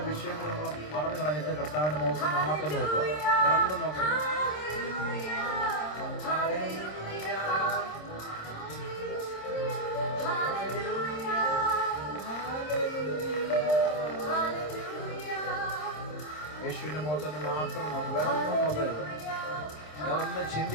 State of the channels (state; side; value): late; right; 26 ms